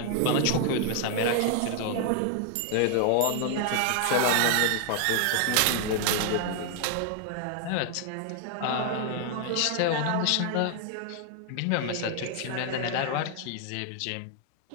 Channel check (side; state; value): both; different; correlation 0.00